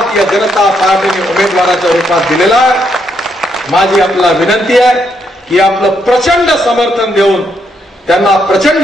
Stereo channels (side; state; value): both; normal; correlation 0.76